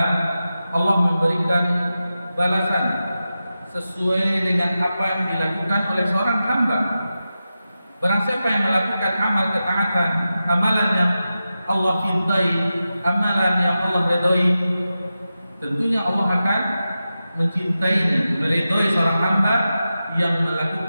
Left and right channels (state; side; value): inverted; both; correlation -0.92